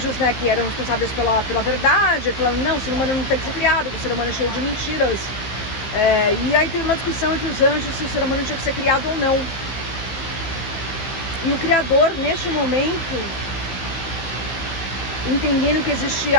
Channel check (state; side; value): late; right; 15 ms